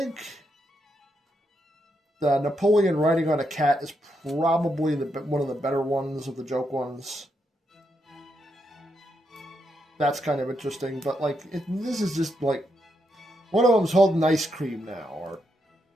the Napoleon riding on a cat is probably one of the better ones of the joke ones. That's kind of interesting, but like this is just like one of them's holding ice cream now,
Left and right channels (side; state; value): both; normal; correlation 0.81